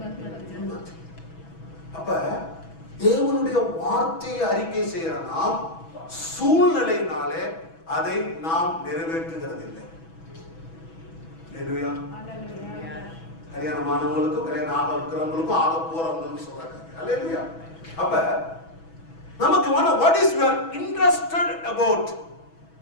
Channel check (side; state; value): right; late; 6.1 ms